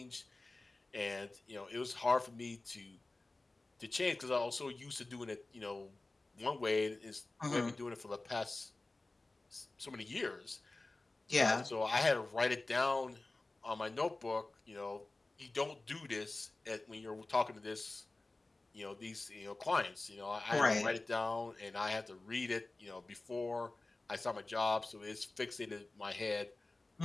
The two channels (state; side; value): quieter; right; 3.1 dB